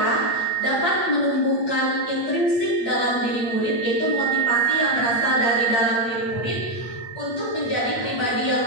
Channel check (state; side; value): late; right; 8.5 ms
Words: dapat menumbuhkan intrinsik dalam diri murid, yaitu motivasi yang berasal dari dalam diri murid untuk menjadi pribadi yang